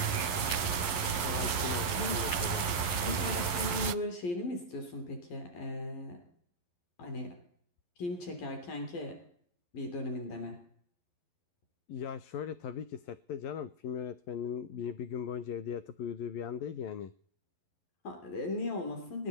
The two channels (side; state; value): right; late; 11 ms